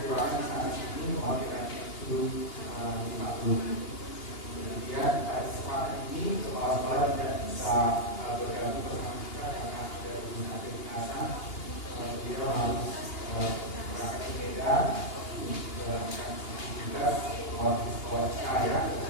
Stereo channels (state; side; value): late; right; 2.8 ms